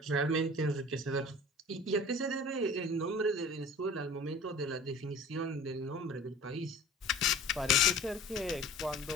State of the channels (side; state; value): both; normal; correlation 0.43